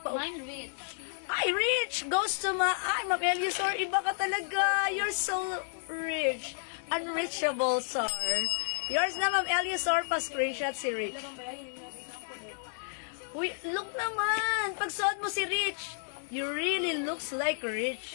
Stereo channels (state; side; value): silent; right; digital silence